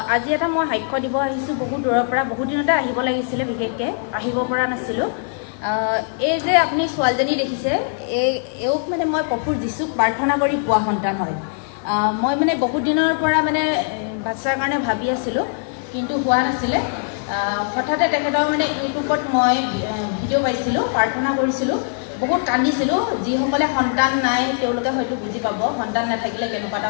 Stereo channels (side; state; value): right; silent; 63 dB below the other